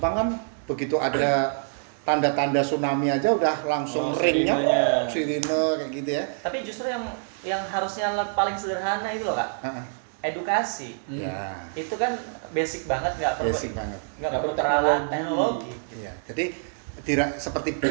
kan begitu ada tanda-tanda tsunami aja udah langsung ringnya sirine kayak gitu ya. Tapi justru yang harusnya paling sederhana itu loh Kak. Edukasi. Itu kan basic banget, nggak perlu teknologi. Iya. Jadi seperti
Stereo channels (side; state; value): left; silent; 61 dB below the other